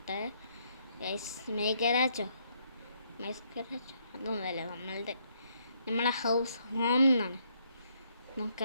മേഘരാജോ അതൊന്നുമല്ല, നമ്മളെ ഹൗസ് ഹോം എന്നാണ്.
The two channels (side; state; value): both; inverted; correlation -0.72